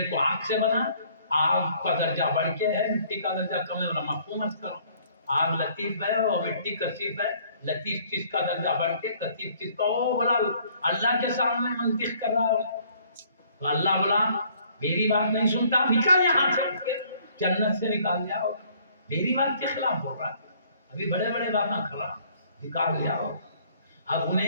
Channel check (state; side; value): inverted; both; correlation -0.60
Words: کو آگ سے بنا۔ آگ کا درجہ بڑھ کے ہے، مٹی کا درجہ کم ہے، مفہوم مت کرو۔ آگ لطیف ہے اور مٹی کثیف ہے، لطیف چیز کا درجہ بڑھ کے کثیف چیز کا، او بولا اللہ کے سامنے منطق کر رہا ہے۔ تو اللہ بولا میری بات نہیں سنتا، نکل یہاں سے، جنت سے نکال لیا ہو، میری بات کے خلاف بول رہا ہے، ابھی بڑے بڑے باتیں کر رہا، نکال لیا ہو۔ اب